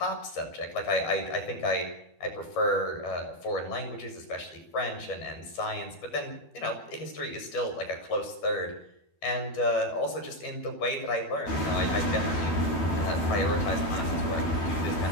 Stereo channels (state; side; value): late; right; 12 ms